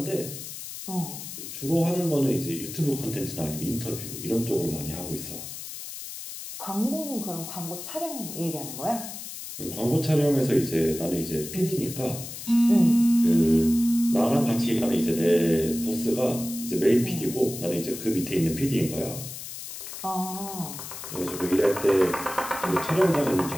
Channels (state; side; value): noise; left; hiss, 10 dB below the sound